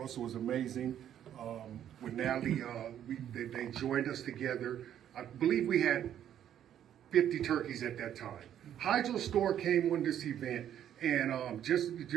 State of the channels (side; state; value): left; quieter; 10.4 dB